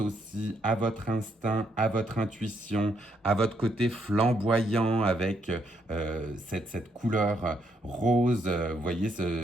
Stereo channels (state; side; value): normal; both; correlation 0.74